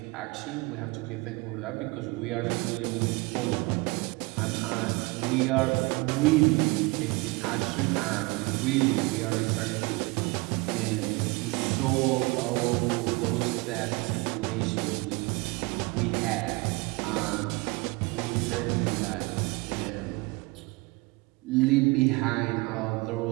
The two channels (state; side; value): quieter; left; 25.3 dB